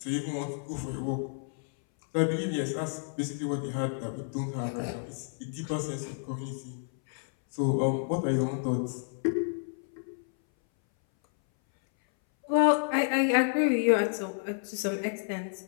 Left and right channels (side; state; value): right; silent; 58 dB below the other